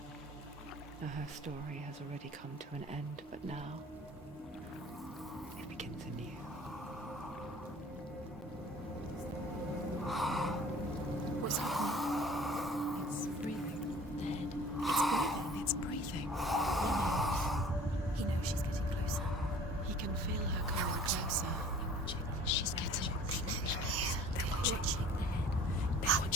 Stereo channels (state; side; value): normal; both; correlation 0.48